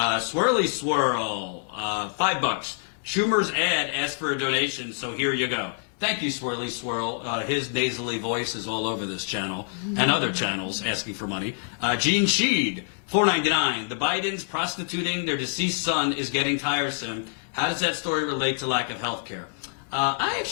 Swirl, $5. Schumer's ad asked for a donation, so here you go. Thank you, Swirly Swirl. His nasally voice is all over this channel and other channels asking for money. Gene Sheed, $4.99. The Bidens prostituting their deceased son is getting tiresome. How does that story relate to lack of health care? I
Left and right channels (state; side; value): silent; right; digital silence